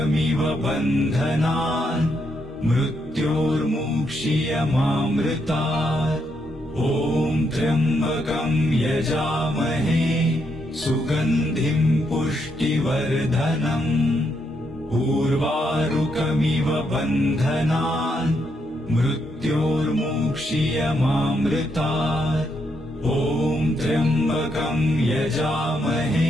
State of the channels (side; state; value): both; normal; correlation 0.78